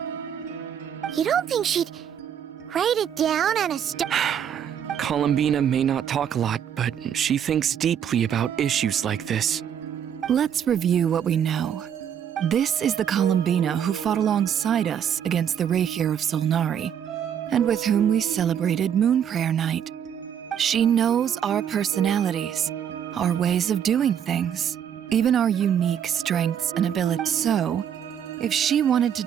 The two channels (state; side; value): quieter; left; 8.8 dB